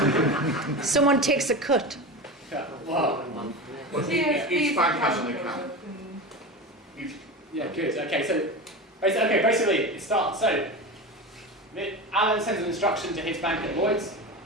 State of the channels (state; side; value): normal; both; correlation 0.26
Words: Someone takes a cut. Yeah, wow. Each bank has an account. Yeah, good. Okay, so basically it starts. So Alan sends an instruction to his bank at Lloyds